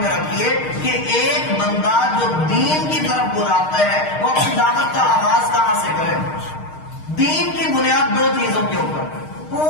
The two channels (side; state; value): right; late; 6.5 ms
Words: میں رکھیے کہ ایک بندہ جو دین کی طرف بلاتا ہے وہ اپنی دعوت کا آغاز کہاں سے کرے؟ دین کی بنیاد 2 چیزوں کے اوپر،